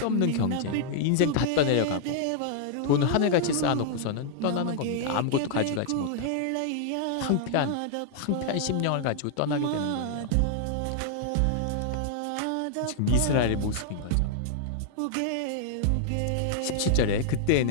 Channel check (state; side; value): different; both; correlation -0.01